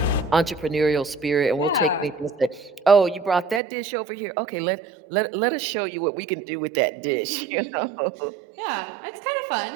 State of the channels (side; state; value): left; drops out; at 3.6 s